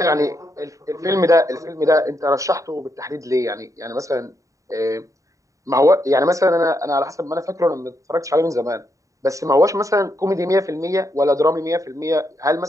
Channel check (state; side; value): late; left; 0.16 ms